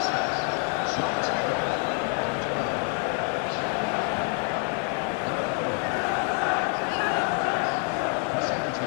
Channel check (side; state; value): right; quieter; 39.3 dB